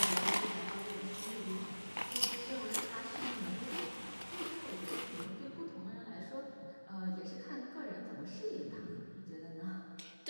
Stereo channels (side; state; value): both; inverted; correlation -1.00